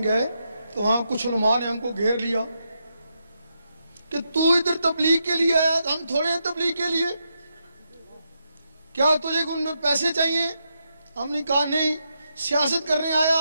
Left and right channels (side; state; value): both; inverted; correlation -0.83